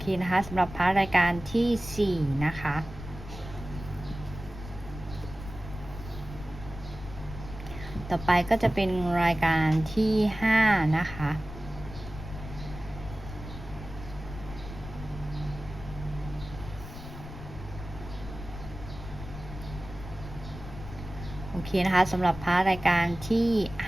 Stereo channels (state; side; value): noise; left; rumble, 12 dB below the sound